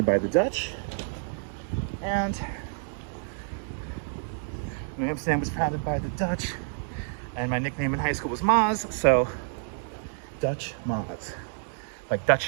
by the Dutch, and New Amsterdam was founded by the Dutch, and my nickname in high school was Maz, so Dutch Maz, like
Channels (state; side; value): silent; left; digital silence